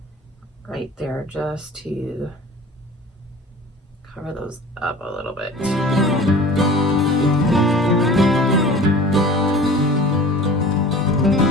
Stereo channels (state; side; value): normal; both; correlation 0.42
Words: right there just to cover those up a little bit. I